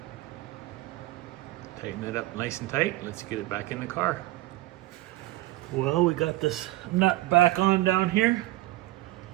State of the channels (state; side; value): quieter; left; 17.8 dB